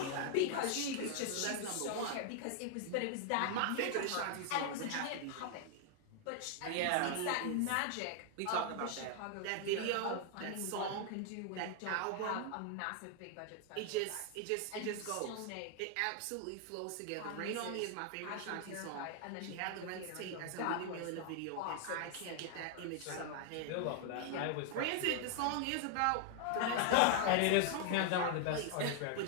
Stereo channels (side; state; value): both; different; correlation 0.00